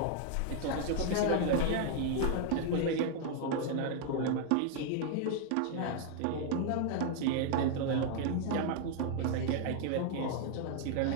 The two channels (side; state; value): both; different; correlation 0.00